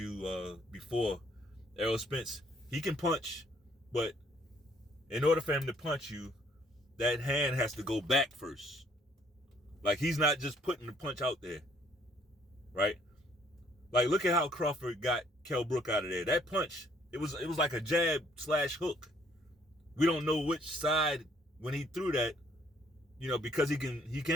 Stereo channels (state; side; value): normal; both; correlation 0.64